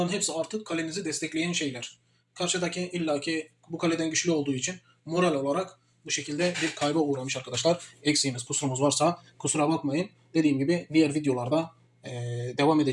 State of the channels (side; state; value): both; identical; correlation 1.00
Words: hepsi artık kalenizi destekleyen şeyler. Karşıdaki illaki bu kaleden güçlü olduğu için moral olarak bu şekilde bir kayba uğramış arkadaşlar. Eksiğimiz, kusurumuz varsa kusura bakmayın. Dediğim gibi diğer videolarda devam